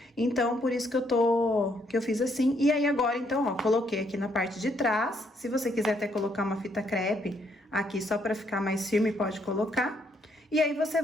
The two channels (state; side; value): normal; both; correlation 0.72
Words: Então, por isso que eu fiz assim. E aí, agora, então, ó, coloquei aqui na parte de trás. Se você quiser até colocar uma fita crepe aqui só para ficar mais firme, pode colocar. E aí, você